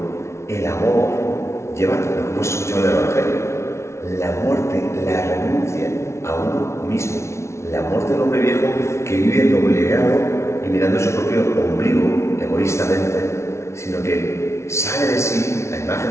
El amor lleva, como hemos escuchado en el Evangelio, la muerte, la renuncia a uno mismo. La muerte del hombre viejo que vive obligado y mirando su propio ombligo egoístamente, sino que sale de sí la imagen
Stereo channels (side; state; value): right; late; 0.13 ms